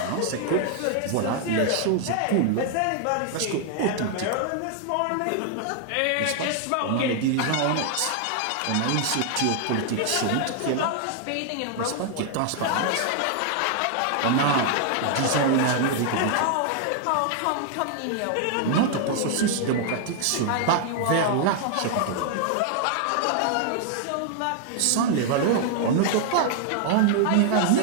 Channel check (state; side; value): different; both; correlation 0.00